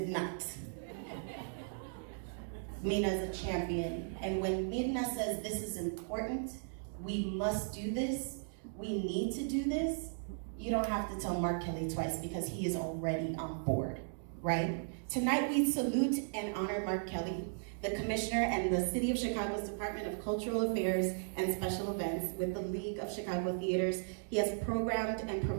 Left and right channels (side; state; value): left; silent; digital silence